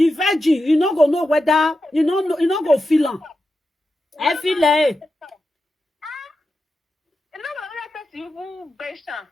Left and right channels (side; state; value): both; normal; correlation 0.90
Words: virgin, you not gonna know whether you not go feel am. I feel it. You better.